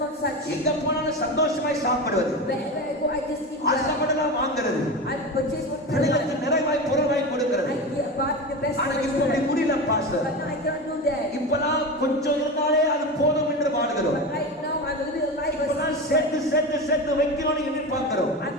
not such. எங்க போனாலும் சந்தோஷமாய் சாப்பிடுவது, Wherever I go, I just eat. ஆசைப்படலாம் வாங்குறது, I purchase what I பிள்ளைகளுக்கு want. நிறைவாய் பொருளாய் கொடுக்கிறது. I give back the best. ஆனா for my இப்ப அப்படி children. முடியல pastor. But now I cannot do that. இப்பெல்லாம் கொஞ்சம் இருந்தாலே அது போதும் என்று வாழ்கிறோம். But right now I'm living a life இப்பெல்லாம் as சேர்த்து வைக்கணும்னு எதிர்பார்க்கிறோம். I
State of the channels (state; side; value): normal; both; correlation 0.24